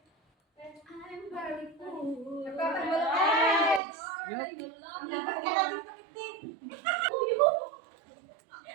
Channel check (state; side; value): drops out; left; at 3.8 s